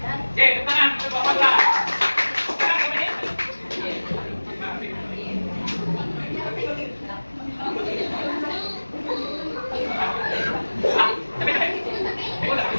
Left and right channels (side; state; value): both; inverted; correlation -1.00